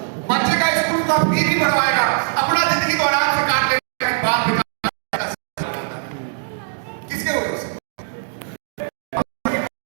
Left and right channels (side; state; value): left; silent; digital silence